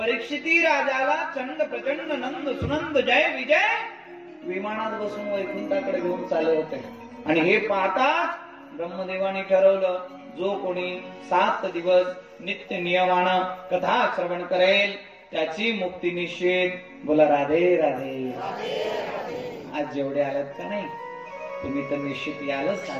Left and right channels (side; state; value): both; identical; correlation 1.00